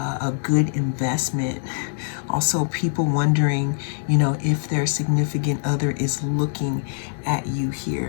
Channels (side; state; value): right; silent; digital silence